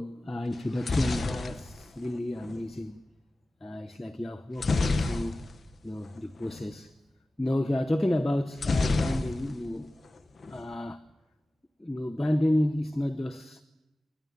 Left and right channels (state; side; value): normal; both; correlation 0.96